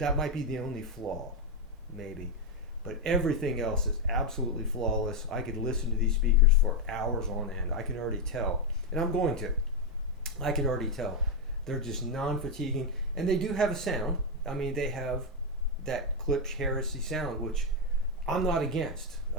might be the only flaw, maybe. But everything else is absolutely flawless. I could listen to these speakers for hours on end. I can already tell, and I'm going to. I can already tell. They're just non-fatiguing, and they do have a sound. I mean, they have that Klipsch Heresy sound, which I'm not against.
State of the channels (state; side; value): normal; both; correlation 0.04